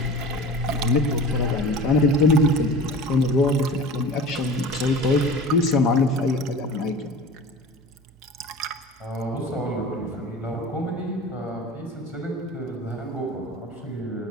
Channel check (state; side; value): normal; both; correlation 0.37